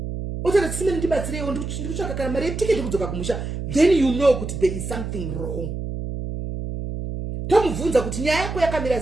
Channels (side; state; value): right; noise; hum, 5 dB below the sound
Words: otona tisimene ndibatsirewo ndikutsvaka kana mari yetiketi kudzoka kumusha, then you know kuti there is something wrong. Tomubvunza kuti nyaya yako yakamira